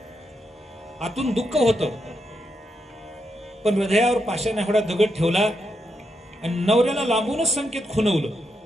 आतून दुःख होतं, पण हृदयावर पाषाण एवढा दगड ठेवला आणि नवऱ्याला लांबूनच संकेत खुणवलं,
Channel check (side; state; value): both; normal; correlation 0.83